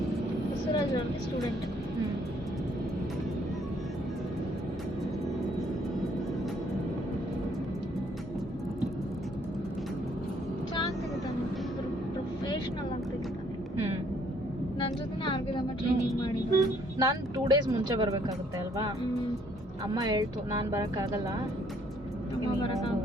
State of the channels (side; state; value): both; normal; correlation 0.65